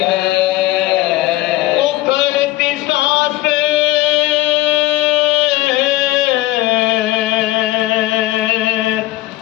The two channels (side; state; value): right; quieter; 17.2 dB